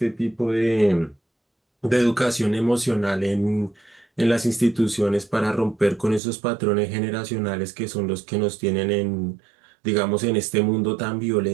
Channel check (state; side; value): drops out; left; at 6.2 s